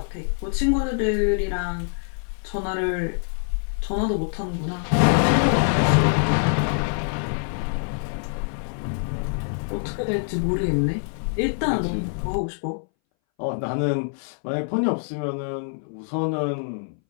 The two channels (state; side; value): silent; right; 61 dB below the other